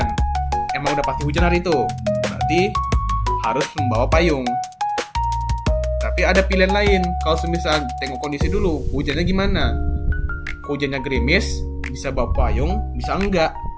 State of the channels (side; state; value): both; identical; correlation 1.00